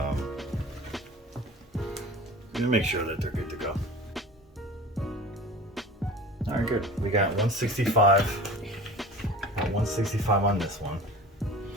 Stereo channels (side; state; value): both; normal; correlation 0.38